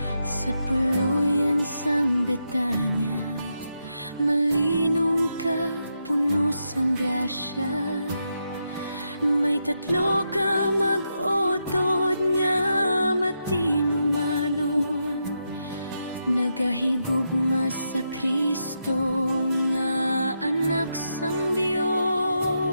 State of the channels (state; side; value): inverted; both; correlation -0.84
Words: Sa puluyan sang Betanya, malinong ka, puno sang grasya. May tatlo ka mag-utod nga matinumanon, nagahigugma sa Kristo nga anak sang